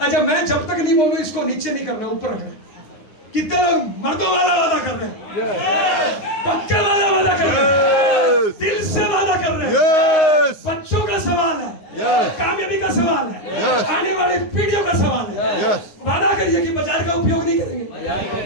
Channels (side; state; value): right; late; 9.7 ms